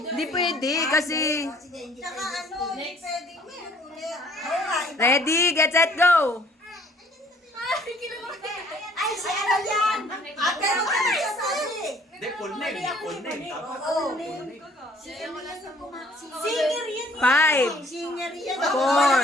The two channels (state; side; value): normal; both; correlation 0.58